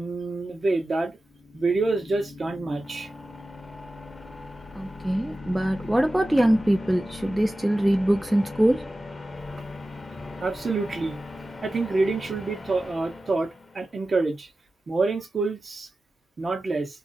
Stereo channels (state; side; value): normal; both; correlation 0.94